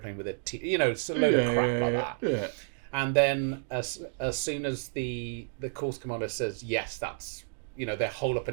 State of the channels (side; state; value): left; silent; digital silence